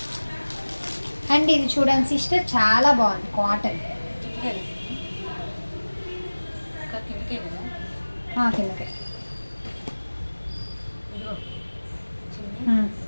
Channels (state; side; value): inverted; both; correlation -1.00